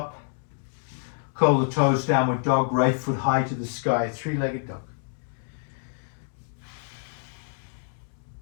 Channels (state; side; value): silent; right; digital silence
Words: Curl the toes, downward dog, right foot high to the sky, 3-legged dog.